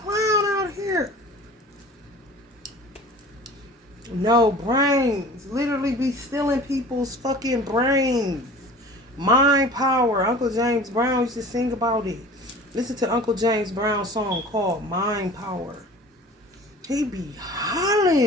out here. No brains. Literally be stealing people's fucking brains. Mind power. Uncle James Brown used to sing about it. Listen to Uncle James Brown's song called Mind Power. He be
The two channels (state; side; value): normal; both; correlation 0.42